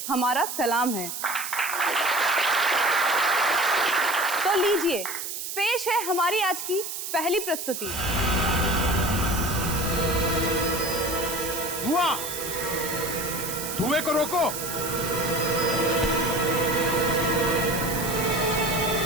हमारा सलाम है। तो लीजिए, पेश है हमारी आज की पहली प्रस्तुति। धुआं, धुएं को रोको।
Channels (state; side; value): noise; right; hiss, 6 dB below the sound